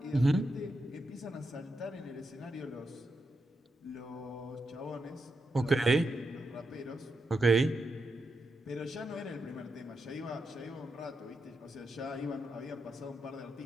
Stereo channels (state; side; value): normal; both; correlation 0.85